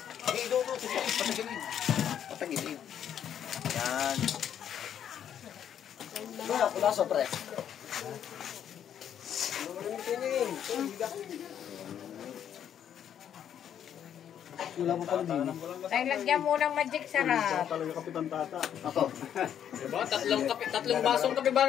Doon. Patagilin. Patagilin. Yan. Wala, pula pre. Wala pa pala din. Tayo lagyan mo ng magic sarap. Talaga kapitan tata. Ako. Diba? Tatlong basong kape ba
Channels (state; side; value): quieter; right; 9.4 dB